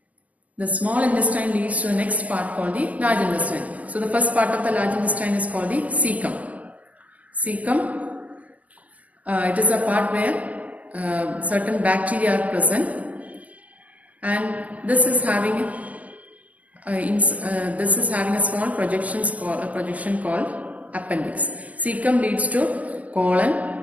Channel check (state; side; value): late; left; 0.076 ms